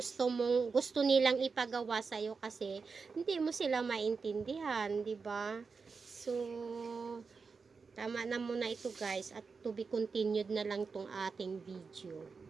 nilang ipagawa sa iyo kasi hindi mo sila maintindihan, 'di ba? So, tama na muna ito guys, at to be continued na lang tong ating video.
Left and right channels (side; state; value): left; quieter; 4.9 dB